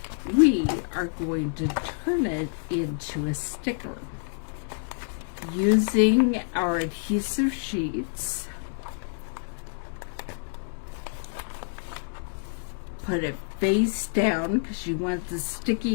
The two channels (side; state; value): right; silent; digital silence